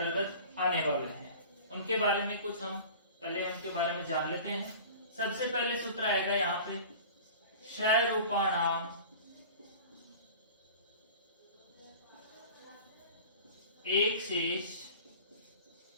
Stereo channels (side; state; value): both; inverted; correlation -0.40